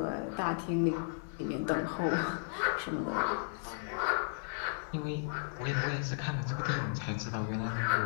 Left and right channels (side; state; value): right; silent; digital silence